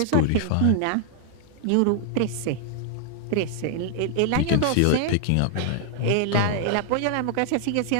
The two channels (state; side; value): different; both; correlation 0.00